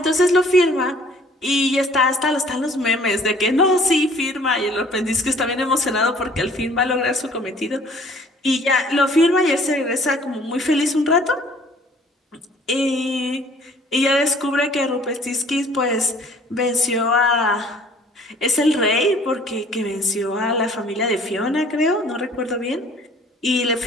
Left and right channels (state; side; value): normal; both; correlation 0.55